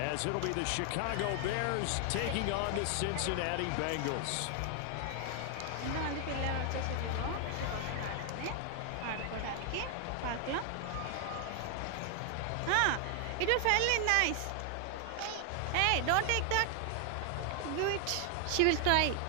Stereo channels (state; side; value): different; both; correlation 0.00